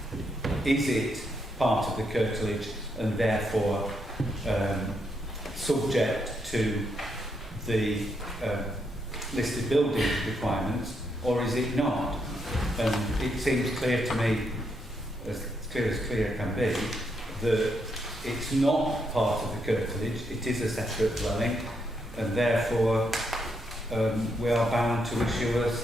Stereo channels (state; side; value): normal; both; correlation 0.79